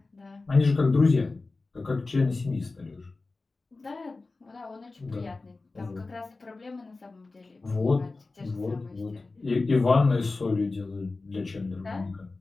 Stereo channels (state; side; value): quieter; right; 3.6 dB